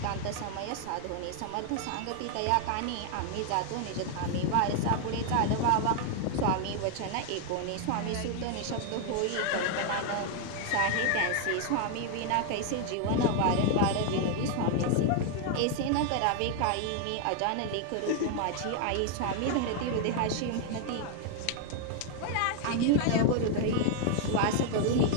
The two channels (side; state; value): both; different; correlation 0.00